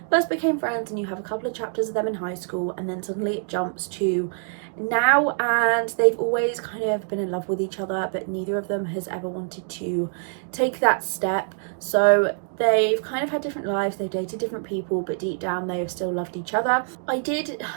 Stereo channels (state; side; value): silent; left; digital silence